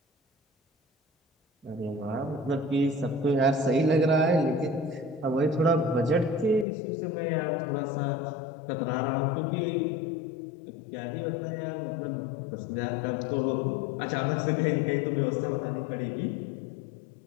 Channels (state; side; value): drops out; right; at 6.7 s